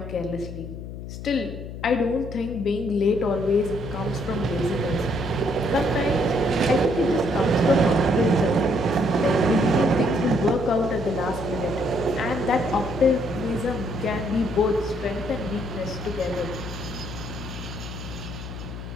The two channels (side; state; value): left; noise; hum, 9 dB below the sound